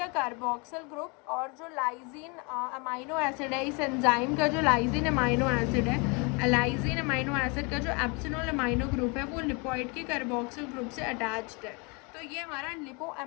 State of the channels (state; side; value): quieter; right; 31.1 dB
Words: कार्बोक्सिल ग्रुप और जो लाइजीन अमाइनो एसिड है, इस एंजाइम का जो लाइजीन अमाइनो एसिड है, लाइजीन अमाइनो एसिड का जो एप्सिनॉल अमाइनो ग्रुप है वो लिपोइड के कार्बोक्सिल ग्रुप से अटैच्ड है। तो ये हमारा